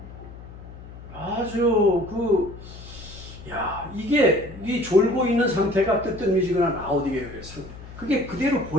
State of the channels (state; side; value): noise; left; hum, 15 dB below the sound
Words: 아주 이게 이 졸고 있는 상태가 뜨뜻미지근한 라오디게아의 상태. 그게 그대로